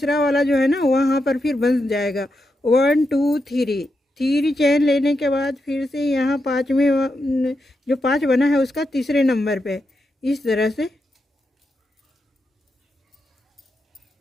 वाला जो है ना वहाँ पर फिर बन जाएगा। 1 2 3 चेन लेने के बाद फिर से यहाँ 5वें जो 5 बना है उसका तीसरे नंबर पे इस तरह से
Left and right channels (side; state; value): both; normal; correlation 0.85